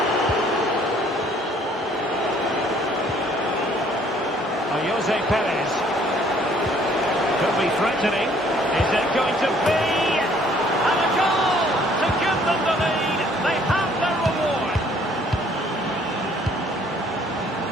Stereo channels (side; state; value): both; normal; correlation 0.60